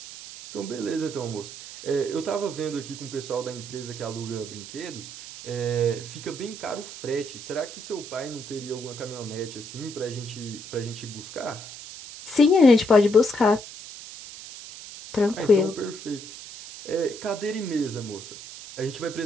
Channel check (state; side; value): noise; right; hiss, 13 dB below the sound